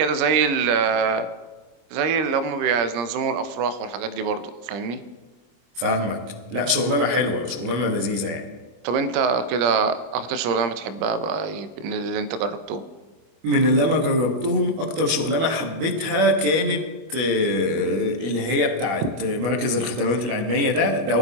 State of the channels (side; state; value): left; late; 25 ms